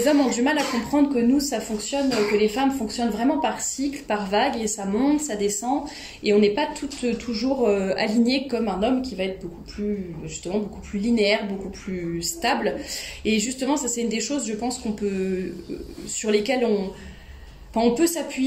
hommes ont du mal à comprendre que nous, ça fonctionne, que les femmes fonctionnent vraiment par cycle, par vague, et ça monte, ça descend, et on n'est pas toutes toujours alignées comme un homme qui va être beaucoup plus linéaire, beaucoup plus stable. Et justement, ça c'est une des choses, je pense sur lesquelles on peut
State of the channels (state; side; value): identical; both; correlation 1.00